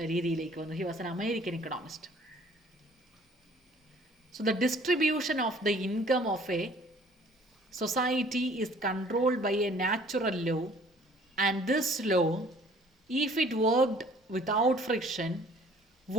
രീതിയിലേക്ക് വന്നു. He was an American Economist. So the distribution of the income of A society is controlled by a natural law, and this law, if it worked without friction,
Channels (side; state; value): both; normal; correlation 0.55